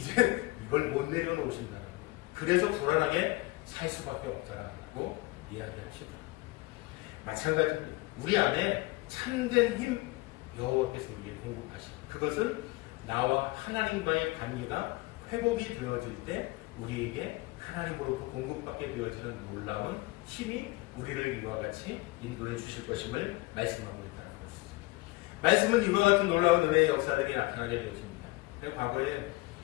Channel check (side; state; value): right; quieter; 22.3 dB